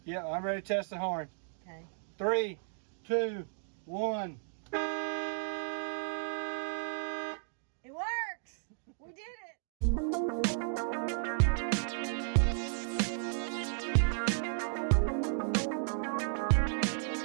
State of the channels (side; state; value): left; silent; digital silence